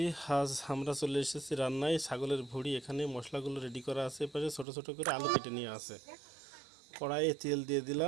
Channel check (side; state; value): left; drops out; at 4.7 s